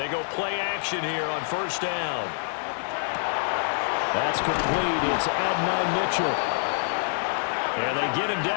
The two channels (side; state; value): right; silent; 61 dB below the other